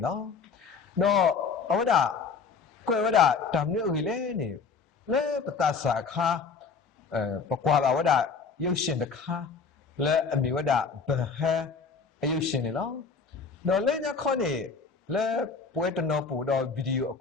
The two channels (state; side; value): quieter; right; 5.2 dB